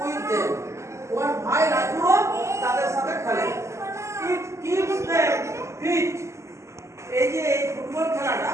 with them. ওর ভাই রাজু তাদের সাথে খেলে। It keeps them fit. এই যে এই ফুটবল খেলাটা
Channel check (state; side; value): late; left; 0.14 ms